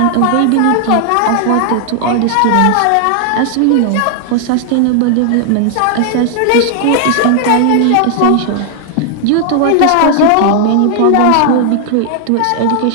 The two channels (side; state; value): both; different; correlation 0.00